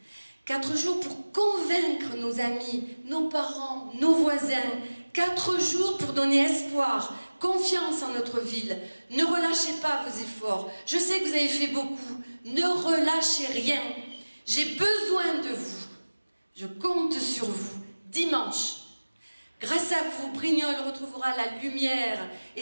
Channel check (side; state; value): both; inverted; correlation -1.00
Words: 4 jours pour convaincre nos amis, nos parents, nos voisins. 4 jours pour donner espoir, confiance en notre ville. Ne relâchez pas vos efforts. Je sais que vous avez fait beaucoup. Ne relâchez rien. J'ai besoin de vous. Je compte sur vous. Dimanche. Grâce à vous, Brignoles retrouvera la lumière